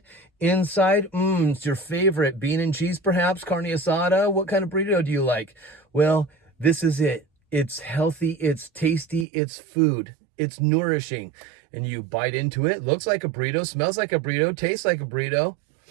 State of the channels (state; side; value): drops out; left; at 9.2 s